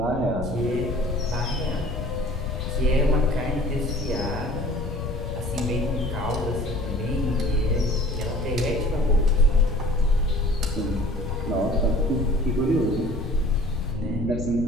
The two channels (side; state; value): left; noise; rumble, 6 dB below the sound